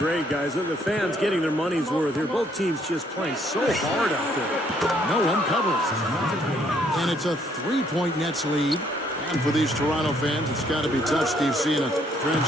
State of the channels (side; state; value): both; normal; correlation 0.67